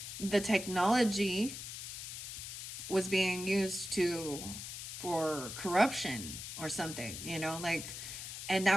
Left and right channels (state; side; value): noise; left; hiss, 8 dB below the sound